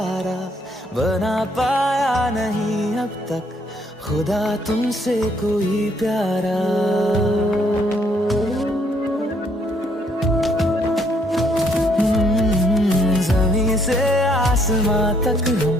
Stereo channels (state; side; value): normal; both; correlation 0.68